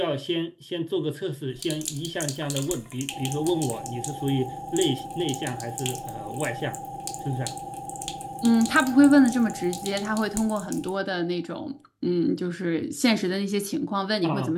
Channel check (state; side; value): identical; both; correlation 1.00